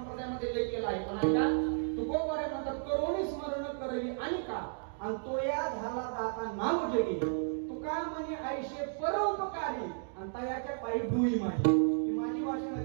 लेख केला आहे. पण ऐका, तुकोबारे म्हणतात करोनी स्मरण करवी आणि का आणि तो या झाला दाता नाव जगी तुका म्हणे आयुष्य परोपकारी आणि तयाच्या पायी डुई माझी. ही माझी भाषा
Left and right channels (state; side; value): silent; left; digital silence